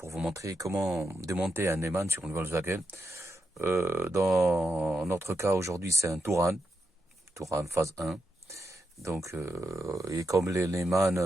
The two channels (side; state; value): both; normal; correlation 0.85